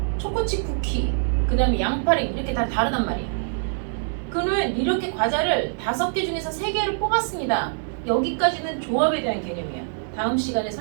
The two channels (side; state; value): left; silent; 62 dB below the other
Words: 초코칩 쿠키, 그 다음에 양파링 이렇게 다 다르단 말이야. 그러면 이렇게 과자를 5개 중에서 3개를 뽑았습니다. 여기까지는 조합에 대한 개념이야. 다음 시간에